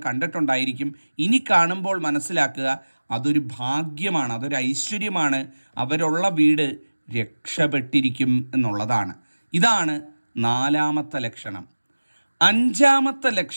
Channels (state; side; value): inverted; both; correlation -1.00